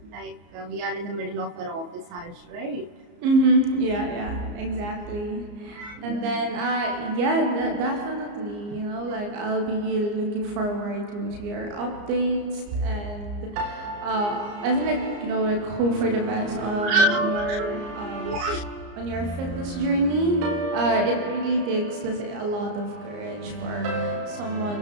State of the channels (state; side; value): late; left; 34 ms